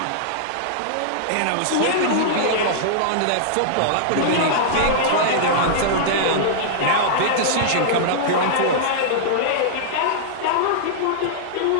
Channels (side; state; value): both; different; correlation -0.02